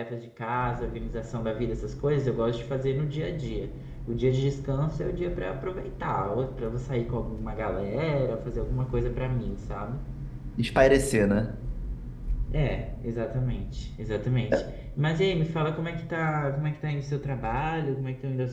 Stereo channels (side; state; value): both; identical; correlation 1.00